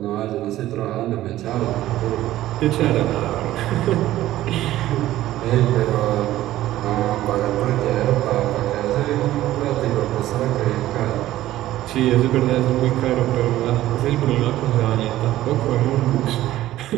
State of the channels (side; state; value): left; quieter; 14.6 dB